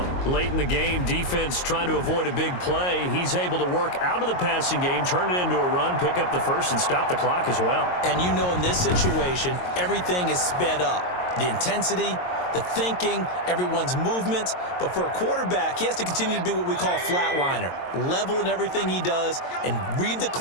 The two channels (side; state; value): right; late; 22 ms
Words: Late in the game, defense trying to avoid a big play. He's able to work out of the passing game, turn it into a run, pick up the 1st, and stop the clock as well. And you know in this situation, everything is sped up. The intensity, the thinking, everyone's movement. But for a quarterback, he has to continue to be what we call a flatliner. Level in everything he does and read the